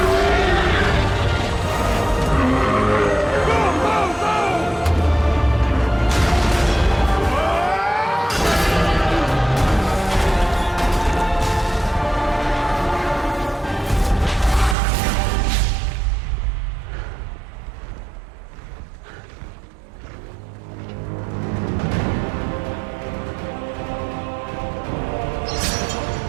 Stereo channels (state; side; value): drops out; left; at 14.8 s